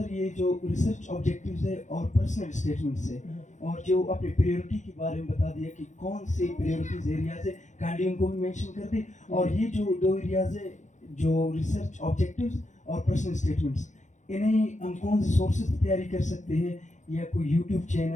یہ جو ریسرچ آبجیکٹیوز ہے اور پرسنل اسٹیٹمنٹس ہے اور جو اپنے پریورٹی کے بارے میں بتا دیا کہ کون سے پریورٹیز ایریاز ہے, کائنڈلی ان کو بھی مینشن کر دیں. اور یہ جو 2 ایریاز ہے جو ریسرچ آبجیکٹیوز اور پرسنل اسٹیٹمنٹس, انہیں ہم کون سے سورسز تیاری کر سکتے ہیں, یا کوئی یوٹیوب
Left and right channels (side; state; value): right; late; 0.35 ms